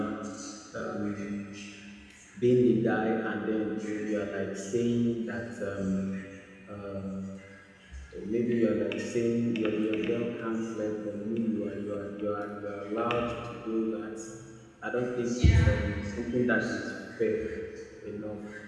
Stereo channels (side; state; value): both; identical; correlation 1.00